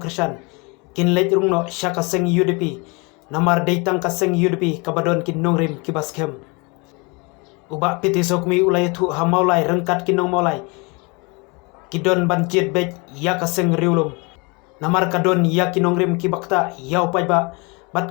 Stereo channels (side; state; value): right; quieter; 29.3 dB